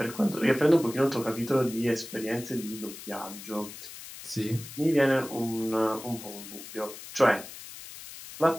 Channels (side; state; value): left; noise; hiss, 14 dB below the sound